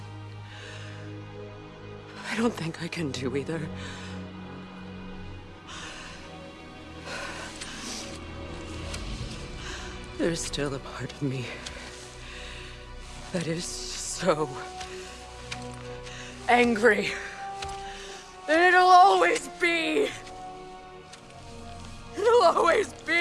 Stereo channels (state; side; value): identical; both; correlation 1.00